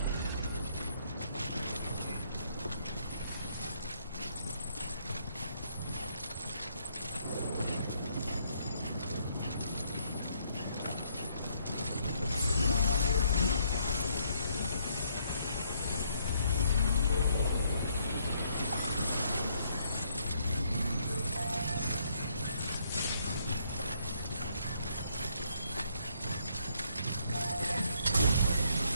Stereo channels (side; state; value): both; inverted; correlation -0.70